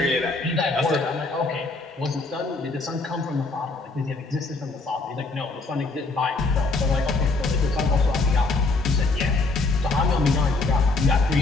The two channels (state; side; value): quieter; right; 3.5 dB